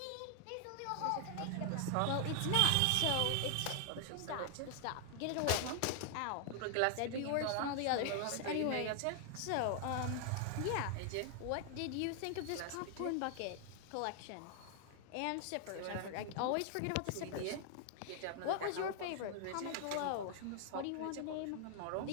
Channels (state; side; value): different; both; correlation 0.00